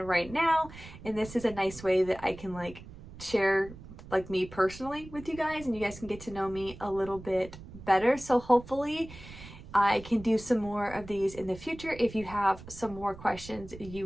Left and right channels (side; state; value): right; noise; rumble, 16 dB below the sound